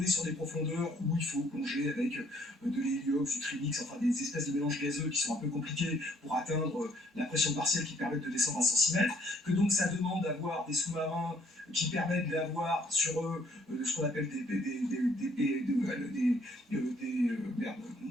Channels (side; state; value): both; normal; correlation 0.64